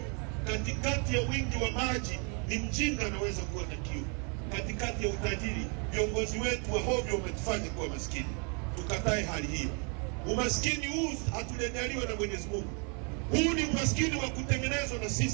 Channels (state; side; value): quieter; left; 36.6 dB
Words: Katikati ya wingi wa maji ni mjinga anaweza kuwa na kiu. Katikati ya utajiri, viongozi wetu wa hovyo wametufanya kuwa maskini. Tukatae hali hiyo. Umaskini huu hatujaliwa na Mwenyezi Mungu. Huu ni umaskini wa kutengenezwa na